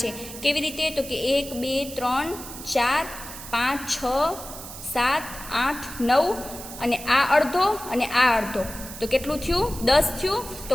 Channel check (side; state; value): right; noise; hiss, 12 dB below the sound